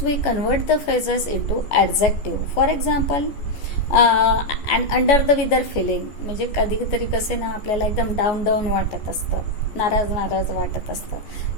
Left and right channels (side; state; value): right; late; 14 ms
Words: we convert the phrases into adjective. For example, and under the weather feeling, म्हणजे कधीतरी कसे ना आपल्याला एकदम डाऊन वाटत असतं, नाराज वाटत असतं,